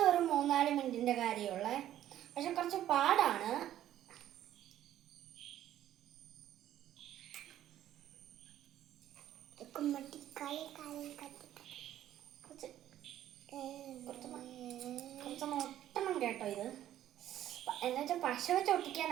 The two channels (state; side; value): quieter; left; 12.2 dB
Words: ഒരു 3-4 മിനിറ്റിൻ്റെ കാര്യമുള്ള, പക്ഷെ കുറച്ച് പാടാണ്. കുറച്ച് ഒട്ടണം കേട്ടോ. ഇത് എന്നുവെച്ചാൽ പശ വെച്ച്